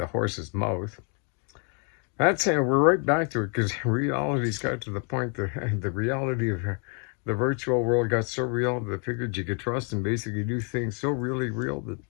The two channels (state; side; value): quieter; right; 38.9 dB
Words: horse's mouth. That's how we're right back to it, because reality's got to the point that the reality of the virtual world got so real that I figured you could trust and basically do things so really real, that it